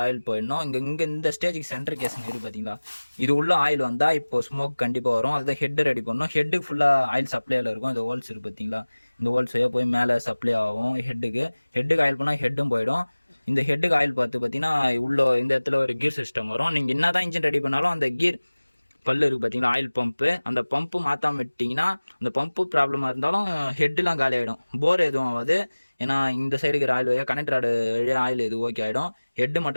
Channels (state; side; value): inverted; both; correlation -1.00